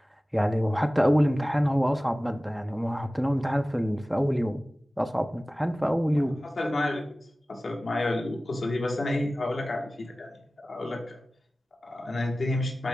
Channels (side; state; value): both; normal; correlation 0.97